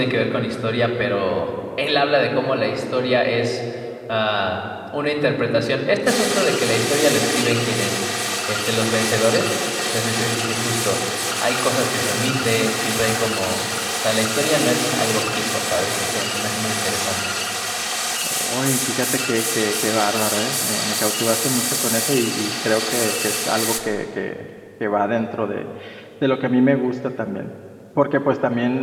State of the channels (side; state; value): both; identical; correlation 1.00